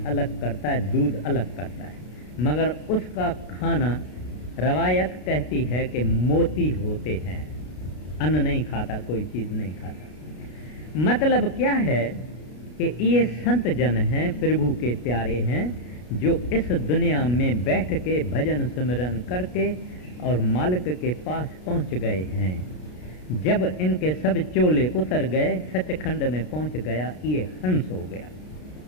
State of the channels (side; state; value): right; late; 33 ms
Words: अलग करता है, दूध अलग करता है, मगर उसका खाना रवायत कहती है कि मोती होते हैं। अन्न नहीं खाता, कोई चीज नहीं खाता। मतलब क्या है कि ये संत जन हैं, प्रभु के प्यारे हैं, जो इस दुनिया में बैठ के भजन सिमरन करके और मालिक के पास पहुंच गए हैं। जब इनके सब चोले उतर गए, सचखंड में पहुंच गया, ये हंस हो गया।